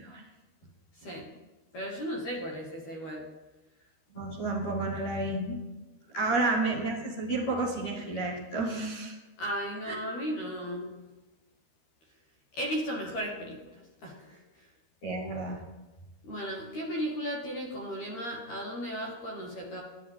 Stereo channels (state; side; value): late; right; 13 ms